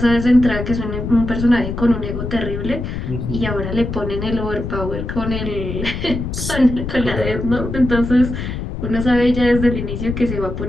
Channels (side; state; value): left; noise; rumble, 5 dB below the sound